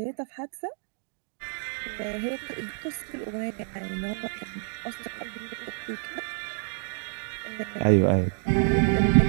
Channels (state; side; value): silent; left; digital silence